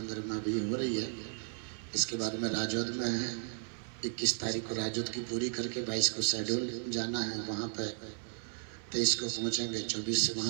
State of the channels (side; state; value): left; silent; 55 dB below the other